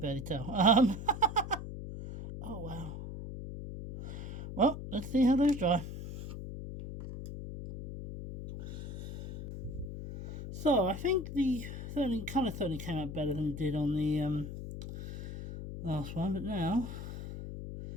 tell. Oh wow. Well, let's see how those dry. So I think the colour certainly came out better than it did on the last one, but now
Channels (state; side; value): noise; left; hum, 8 dB below the sound